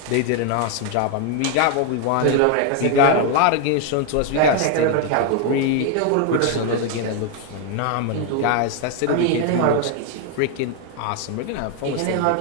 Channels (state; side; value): different; both; correlation 0.01